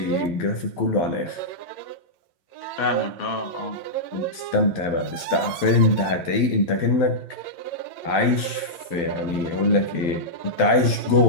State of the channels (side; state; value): right; late; 12 ms